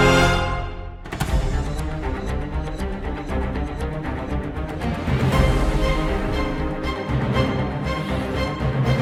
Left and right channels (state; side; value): identical; both; correlation 1.00